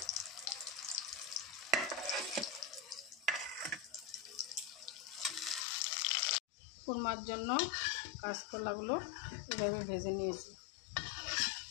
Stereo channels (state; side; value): drops out; right; at 5.7 s